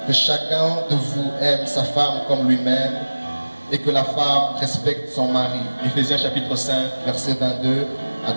que chacun de vous aime sa femme comme lui-même, et que la femme respecte son mari. Éphésiens chapitre 5, versets 22 à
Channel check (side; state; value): both; inverted; correlation -1.00